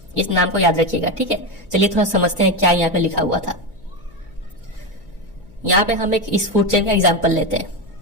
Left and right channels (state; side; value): noise; left; hum, 26 dB below the sound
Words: इस नाम को याद रखिएगा, ठीक है। चलिए थोड़ा समझते हैं क्या यहाँ पे लिखा हुआ था। यहाँ पे हम एक इस फूड चेन का एग्जाम्पल लेते